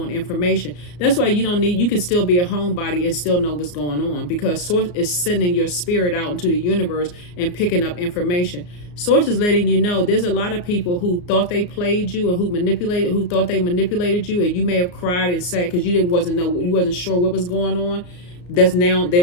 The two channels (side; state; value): right; late; 34 ms